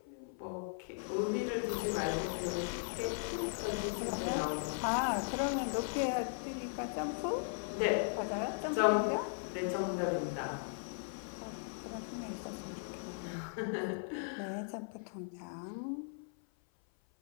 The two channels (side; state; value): right; silent; 53 dB below the other